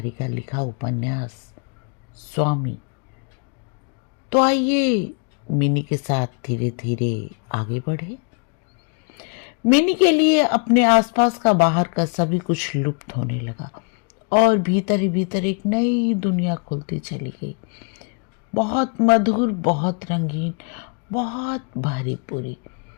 का लिखा उपन्यास स्वामी। तो आइए मिनी के साथ धीरे धीरे आगे बढ़े। मिनी के लिए अपने आसपास का बाहर का सभी कुछ लुप्त होने लगा और भीतर ही भीतर एक नई दुनिया खुलती चली गई। बहुत मधुर, बहुत रंगीन, बहुत भरी पूरी।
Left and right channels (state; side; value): quieter; right; 37.1 dB